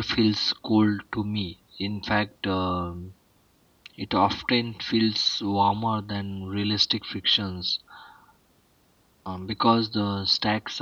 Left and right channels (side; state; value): both; identical; correlation 1.00